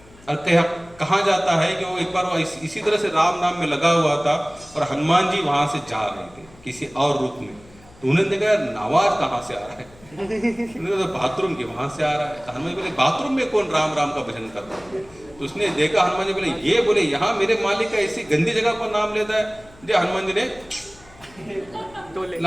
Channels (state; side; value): noise; left; hum, 25 dB below the sound